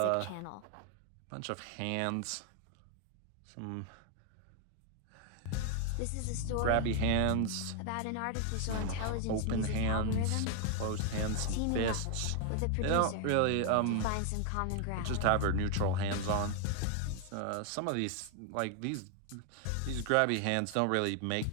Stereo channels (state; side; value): different; both; correlation 0.00